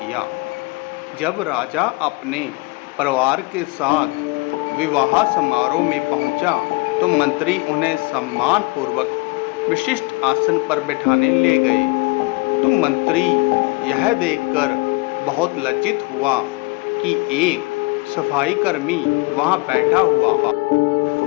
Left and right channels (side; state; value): right; quieter; 25.4 dB